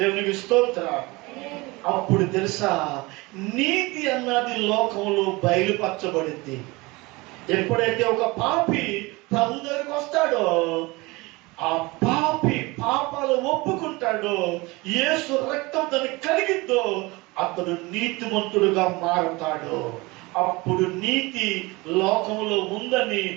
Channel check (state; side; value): quieter; left; 23.5 dB